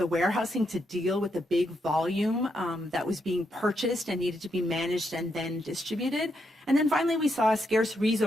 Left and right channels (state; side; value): normal; both; correlation 0.80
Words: warehousing to deal with the big volume that was being purchased and needed to be managed and then distributed. And then finally, we saw a scarce